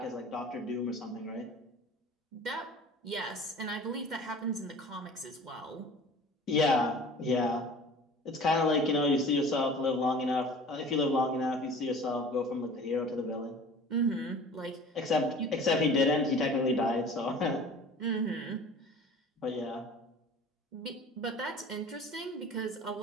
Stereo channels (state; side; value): normal; both; correlation 0.43